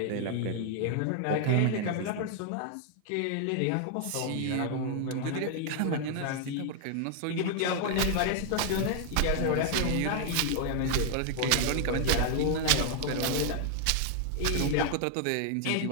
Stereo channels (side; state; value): both; different; correlation 0.00